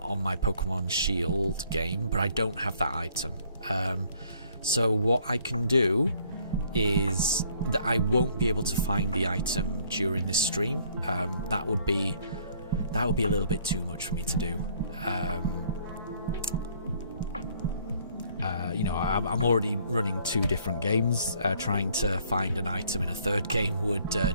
my Pokemon Shield game, but I don't have that item. So what I can do is that I won't be able to find the item during this stream. That would be a little bit too much for me to do. You know, I'm already running 2 different games. Trying to find an item in a 3rd game would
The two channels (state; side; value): inverted; both; correlation -0.62